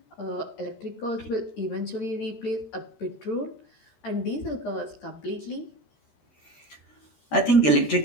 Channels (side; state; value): right; late; 13 ms